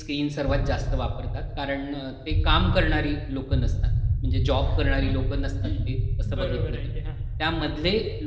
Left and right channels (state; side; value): identical; both; correlation 1.00